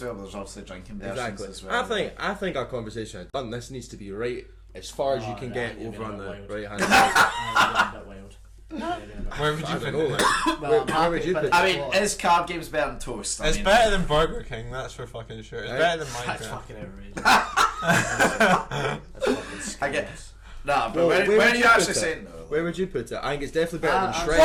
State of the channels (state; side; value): identical; both; correlation 1.00